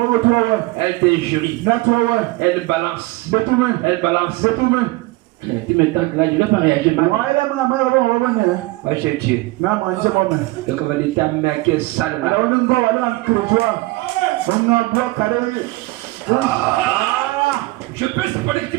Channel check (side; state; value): left; quieter; 20.9 dB